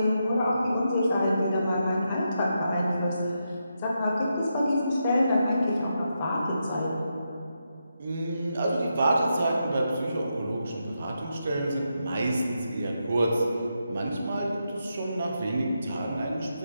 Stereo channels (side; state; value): both; inverted; correlation -0.84